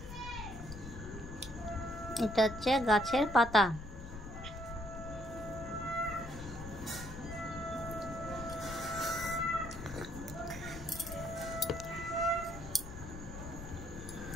এটা হচ্ছে গাছের পাতা।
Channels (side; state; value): left; noise; rumble, 10 dB below the sound